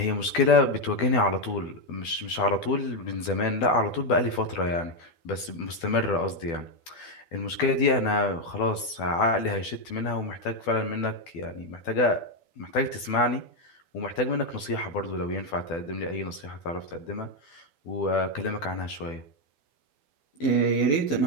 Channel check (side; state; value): right; late; 12 ms